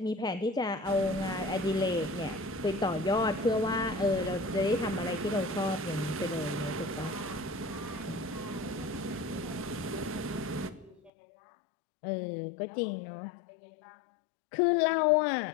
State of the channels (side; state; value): right; drops out; at 11.1 s